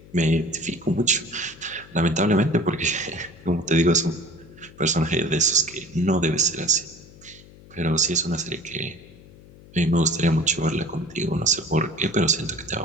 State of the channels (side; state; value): left; noise; hum, 22 dB below the sound